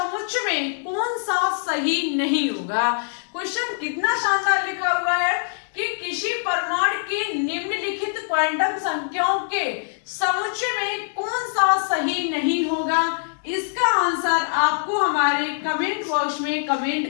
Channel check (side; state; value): right; silent; digital silence